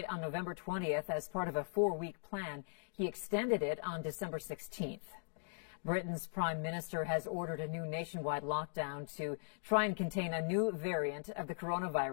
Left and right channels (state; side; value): silent; right; digital silence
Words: on November 20th as part of a 4-week plan. He extended it on December 16th. Britain's prime minister has ordered a new nationwide lockdown to try and contain a new variant of the